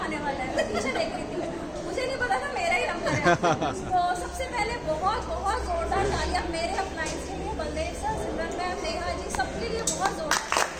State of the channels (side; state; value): both; identical; correlation 1.00